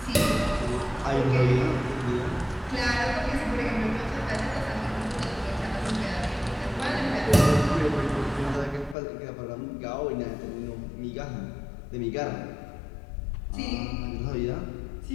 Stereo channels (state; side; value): drops out; right; at 9.0 s